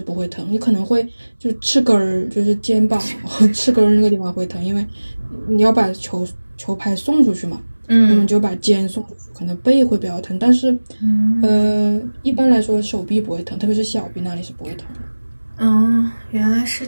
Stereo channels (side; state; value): both; inverted; correlation -1.00